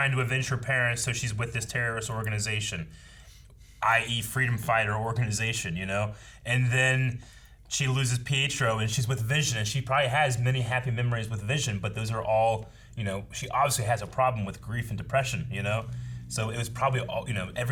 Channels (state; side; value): identical; both; correlation 1.00